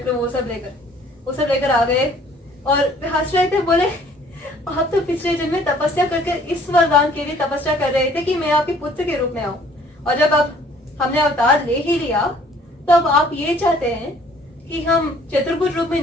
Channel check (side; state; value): both; normal; correlation 0.57